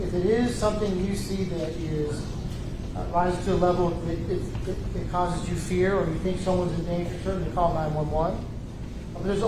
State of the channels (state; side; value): identical; both; correlation 1.00